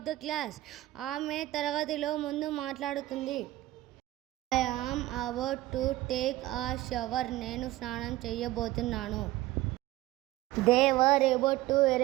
the class. ఆమె తరగతిలో ముందు మాట్లాడుతుంది. I am about to take a shower. నేను స్నానం చేయబోతున్నాను. They were about to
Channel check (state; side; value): quieter; left; 16.8 dB